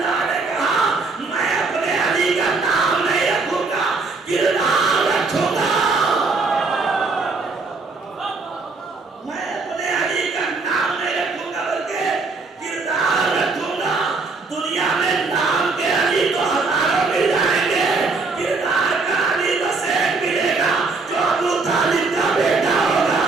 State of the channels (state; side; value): quieter; left; 4.0 dB